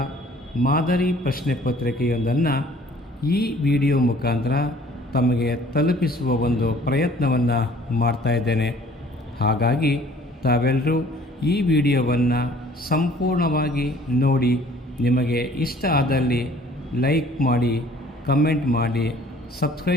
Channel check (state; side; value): normal; both; correlation 0.54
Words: ಮಾದರಿ ಪ್ರಶ್ನೆ ಪತ್ರಿಕೆಯೊಂದನ್ನು ಈ ವಿಡಿಯೋ ಮುಖಾಂತರ ತಮಗೆ ತಲುಪಿಸುವ ಒಂದು ಪ್ರಯತ್ನವನ್ನು ಮಾಡ್ತಾ ಇದ್ದೇನೆ. ಹಾಗಾಗಿ ತಾವೆಲ್ಲರೂ ಈ ವಿಡಿಯೋವನ್ನು ಸಂಪೂರ್ಣವಾಗಿ ನೋಡಿ, ನಿಮಗೆ ಇಷ್ಟ ಆದಲ್ಲಿ ಲೈಕ್ ಮಾಡಿ, ಕಮೆಂಟ್ ಮಾಡಿ,